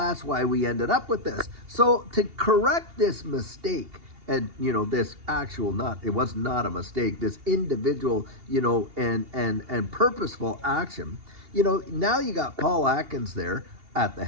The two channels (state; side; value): late; left; 2.8 ms